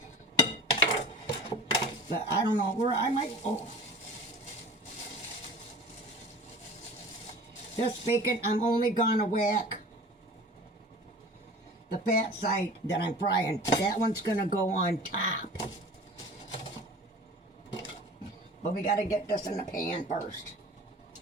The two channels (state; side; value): normal; both; correlation 0.41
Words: But I don't know where I might. Oh, this bacon, I'm only gonna whack the fat side that I'm frying. That one's gonna go on top. But we gotta get this in the pan first.